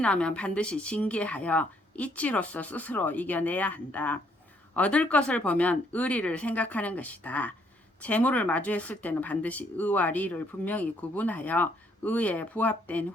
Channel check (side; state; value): both; normal; correlation 0.68